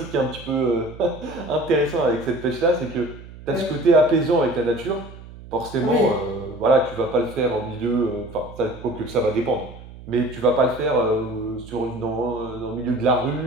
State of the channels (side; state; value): right; noise; hum, 17 dB below the sound